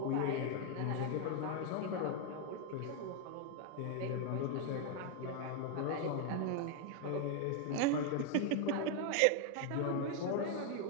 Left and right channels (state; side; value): different; both; correlation 0.01